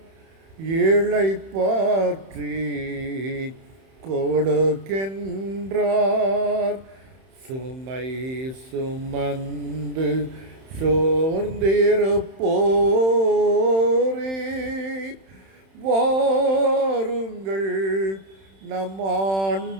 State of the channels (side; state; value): left; late; 31 ms